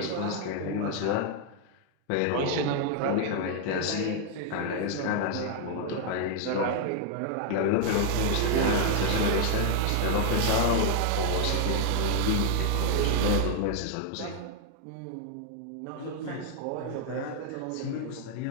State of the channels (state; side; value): different; both; correlation 0.00